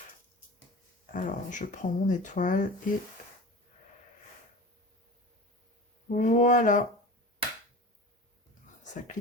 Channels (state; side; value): normal; both; correlation 0.34